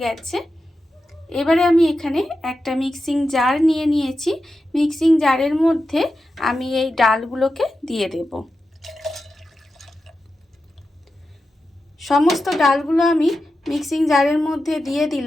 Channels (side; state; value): both; normal; correlation 0.91